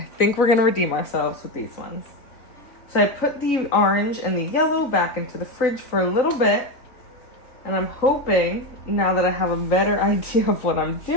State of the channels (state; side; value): late; right; 3.9 ms